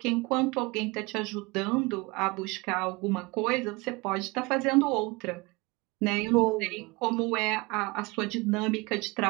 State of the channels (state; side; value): quieter; left; 25.0 dB